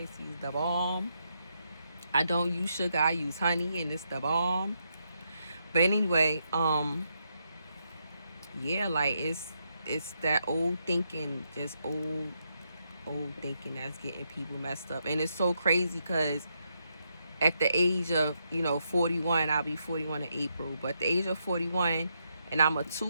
tea is the bomb. I don't use sugar. I use honey, and it's the bomb. But anyway, yeah, like it's that old thinking, just old thinking that's getting people messed up. And it's so crazy because at the age of, you know, 41, I'll be 41 in April, but at the age of 41, and I'm a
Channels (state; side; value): inverted; both; correlation -0.80